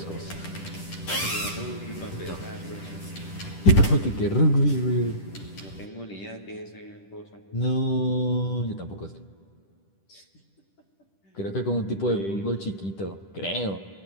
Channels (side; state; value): right; late; 10 ms